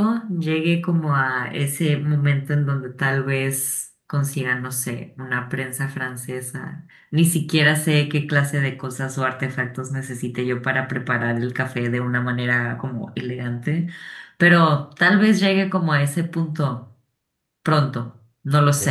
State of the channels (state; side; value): identical; both; correlation 1.00